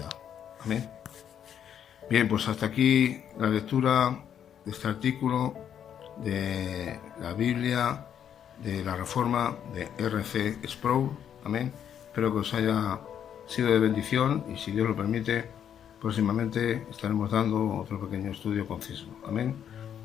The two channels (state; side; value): quieter; right; 9.1 dB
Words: Amén. Bien, pues hasta aquí la lectura de este artículo de la Biblia de la Reforma de R.C. Sproul. Amén. Espero que os haya sido de bendición y, si Dios lo permite, próximamente estaremos dando otro pequeño estudio conciso. Amén.